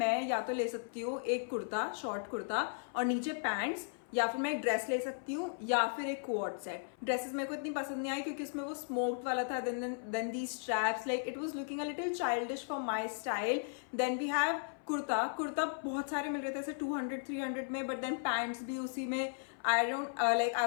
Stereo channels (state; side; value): silent; right; 54 dB below the other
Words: मैं या तो ले सकती हूँ एक कुर्ता, शॉर्ट कुर्ता और नीचे पैंट्स, या फिर मैं एक ड्रेस ले सकती हूँ या फिर एक कोट सेट. ड्रेसेस मेरे को इतनी पसंद नहीं आई क्योंकि उसमें वो स्मोक्ड वाला था. Then the straps, like it was looking a little childish for my style. Then we have kurta बहुत सारे मिल रहे थे ऐसे 200-300 में, बट देन पैंट्स भी उसी में. आई